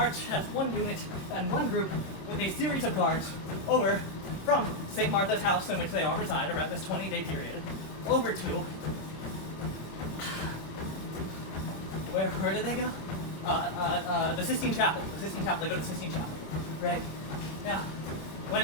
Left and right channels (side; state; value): right; late; 26 ms